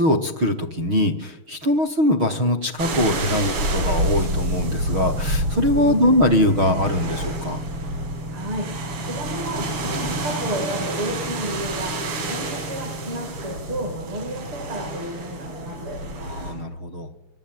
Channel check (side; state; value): left; late; 6.4 ms